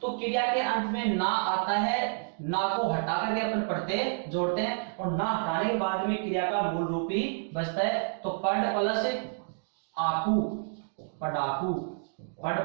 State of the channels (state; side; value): silent; left; digital silence